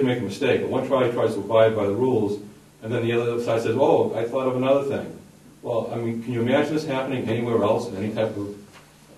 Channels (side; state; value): both; identical; correlation 1.00